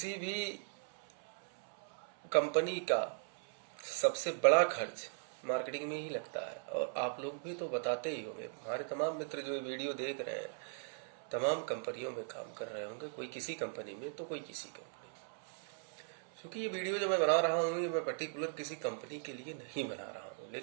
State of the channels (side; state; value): left; silent; 52 dB below the other